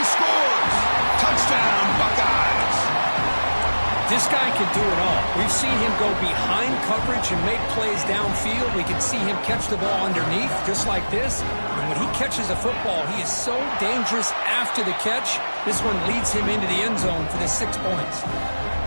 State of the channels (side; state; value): both; inverted; correlation -1.00